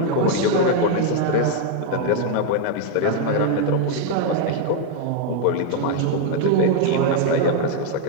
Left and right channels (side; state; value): both; different; correlation 0.01